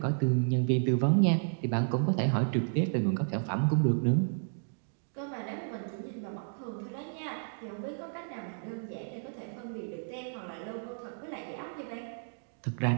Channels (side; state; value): left; silent; digital silence